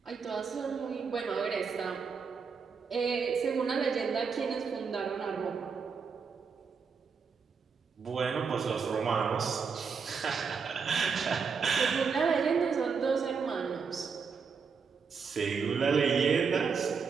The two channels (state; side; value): quieter; left; 5.7 dB